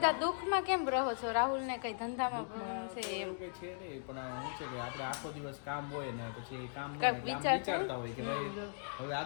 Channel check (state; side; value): silent; right; digital silence